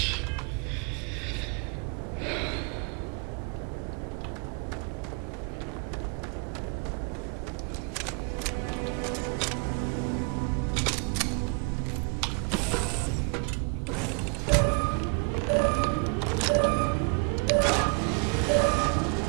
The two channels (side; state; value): left; quieter; 35.1 dB